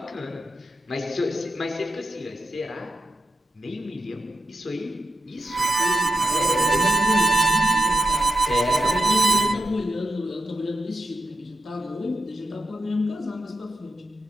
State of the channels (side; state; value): both; normal; correlation 0.87